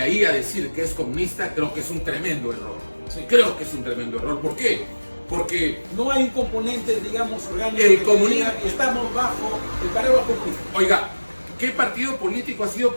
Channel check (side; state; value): both; inverted; correlation -1.00